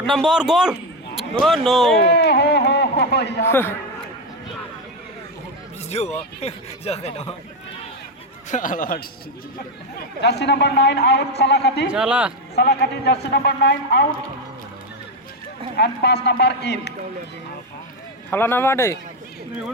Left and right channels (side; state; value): both; normal; correlation 0.09